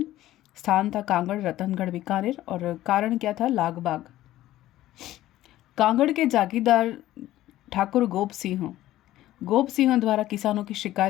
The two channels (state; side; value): quieter; right; 14.7 dB